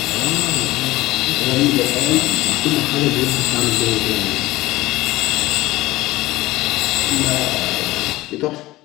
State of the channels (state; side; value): quieter; right; 18.2 dB